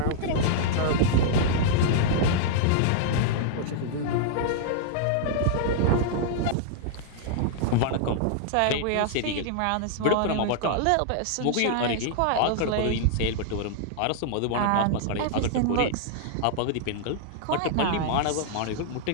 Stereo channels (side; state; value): both; different; correlation -0.01